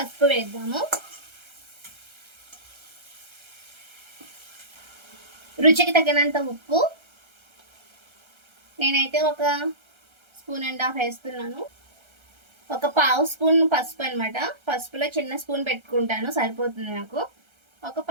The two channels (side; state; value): left; late; 1.3 ms